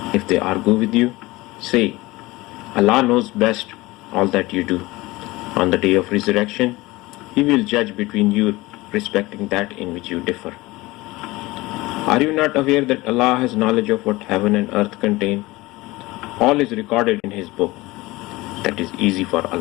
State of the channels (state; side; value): quieter; right; 20.6 dB